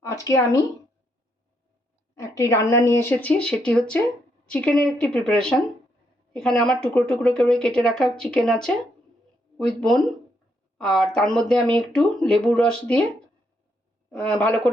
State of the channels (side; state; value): both; normal; correlation 0.76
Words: আজকে আমি একটি রান্না নিয়ে এসেছি, সেটি হচ্ছে চিকেনের একটি প্রিপারেশন। এখানে আমার টুকরো টুকরো করে কেটে রাখা চিকেন আছে উইথ বোন, আর তার মধ্যে আমি একটু লেবুর রস দিয়ে ভালো